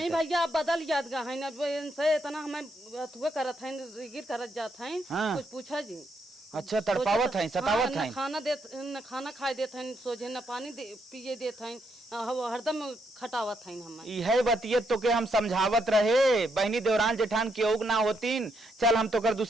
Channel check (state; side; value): normal; both; correlation 0.77